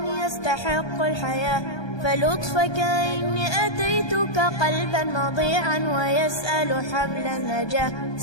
يستحق الحياة. فلطفك إني أتيتك قلبا مضيعا ويسأل حبل النجاة.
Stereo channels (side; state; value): right; late; 1.2 ms